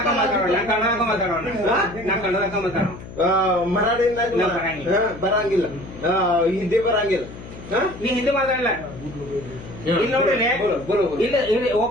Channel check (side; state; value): left; noise; hum, 14 dB below the sound